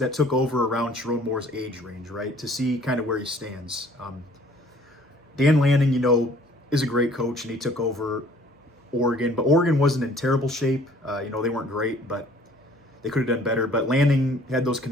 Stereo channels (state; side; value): normal; both; correlation 0.56